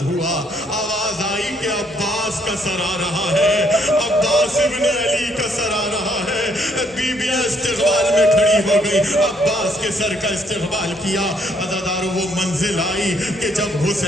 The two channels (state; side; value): normal; both; correlation 0.69